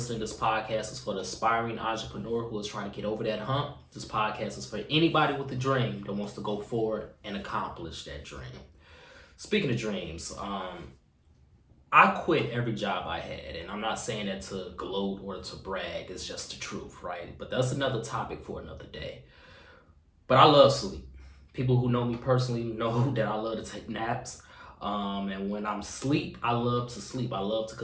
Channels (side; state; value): both; identical; correlation 1.00